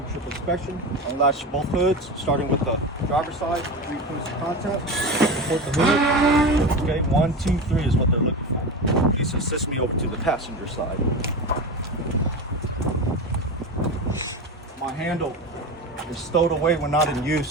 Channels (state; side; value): normal; both; correlation 0.24